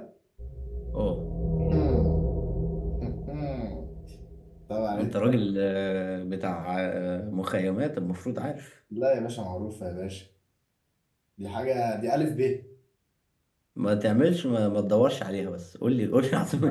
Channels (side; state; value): both; identical; correlation 1.00